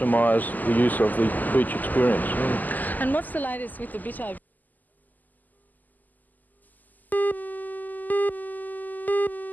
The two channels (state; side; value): late; right; 0.083 ms